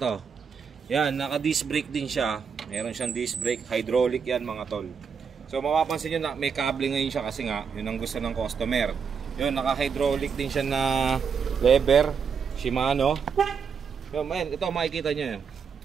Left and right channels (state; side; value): quieter; left; 6.3 dB